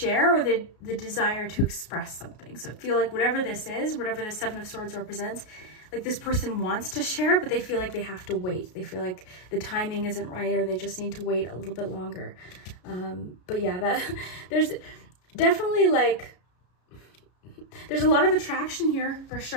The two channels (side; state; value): right; late; 33 ms